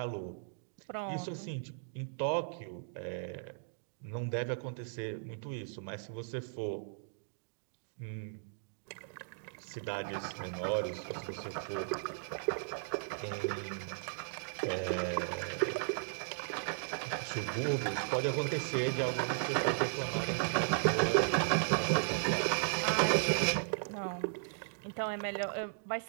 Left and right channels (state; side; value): silent; left; digital silence